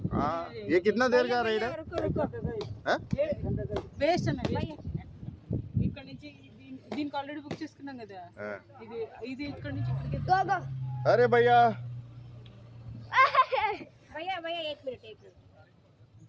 ये कितना देर का राइड है? వేస్ట్ అన్నది ఇక్కడ నుంచి దీనికి ఆల్రెడీ బుక్ చేసుకున్నాం కదా ఇది ఇది ఇక్కడ నుంచి ఇక్కడికి Go, go. अरे भैया భయ్యా భయ్యా एक मिनट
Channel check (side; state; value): both; identical; correlation 1.00